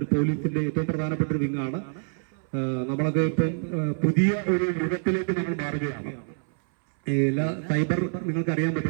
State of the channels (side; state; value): left; silent; 60 dB below the other